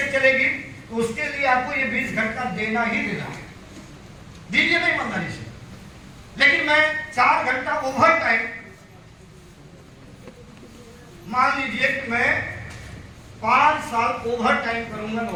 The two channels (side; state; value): both; identical; correlation 1.00